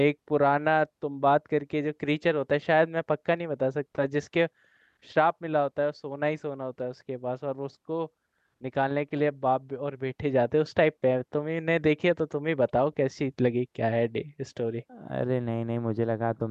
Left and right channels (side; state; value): both; identical; correlation 1.00